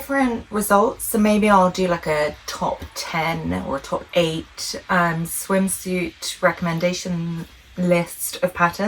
results. So maybe I'll do like a top 10 or a top 8 swimsuit recommendation list of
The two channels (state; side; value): identical; both; correlation 1.00